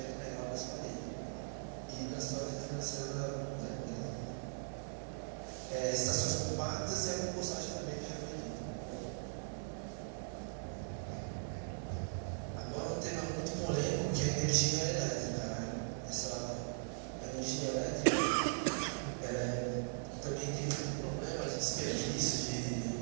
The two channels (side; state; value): left; silent; digital silence